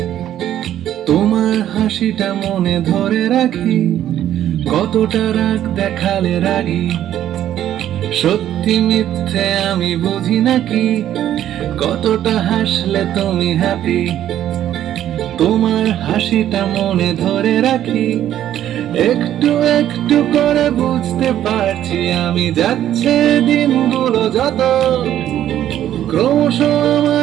তোমার হাসিটা মনে ধরে রাখি। কতটা রাগ দেখালে রাগি, সত্যি মিথ্যে আমি বুঝি নাকি? কতটা হাসলে তুমি হ্যাপি, তোমার হাসিটা মনে ধরে রাখি। একটু একটু করে বুঝতে পারছি আমি, যাচ্ছে দিনগুলো যত, ক্রমশ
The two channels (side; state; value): left; quieter; 11.6 dB